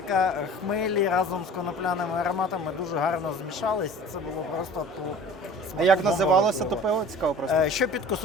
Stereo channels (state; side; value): normal; both; correlation 0.43